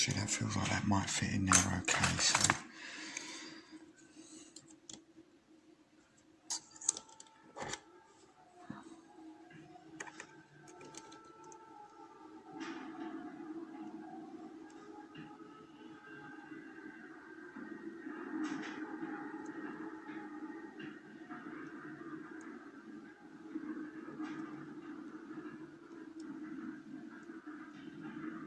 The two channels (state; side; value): identical; both; correlation 1.00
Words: that feels like that might fit in there okay, so...